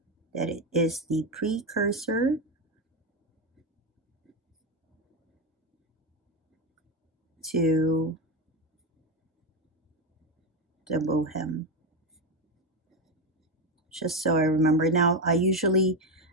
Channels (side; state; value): both; normal; correlation 0.12